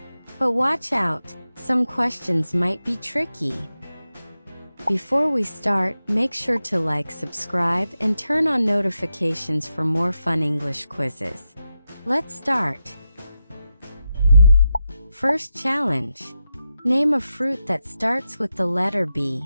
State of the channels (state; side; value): inverted; both; correlation -0.88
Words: But watch out, some questions might be tricky. Before we start, make sure to like, subscribe, and turn on notifications for more fun English quizzes. Let's start. First challenge. Name a fruit that starts with the letter